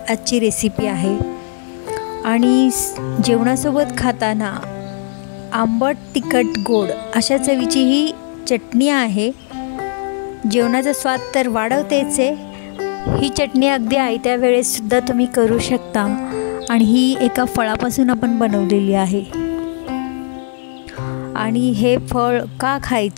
आजची रेसिपी आहे। आणि जेवणासोबत खाताना आंबट तिखट गोड अशा चवीची ही चटणी आहे। जेवणाचा स्वाद तर वाढवतेच आहे। ही चटणी अगदी आयत्या वेळेस सुद्धा तुम्ही करू शकता आणि ही एका फळापासून आपण बनवलेली आहे। आणि हे फळ का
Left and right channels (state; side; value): silent; right; 68 dB below the other